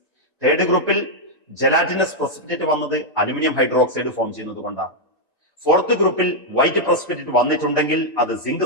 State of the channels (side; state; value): both; normal; correlation -0.03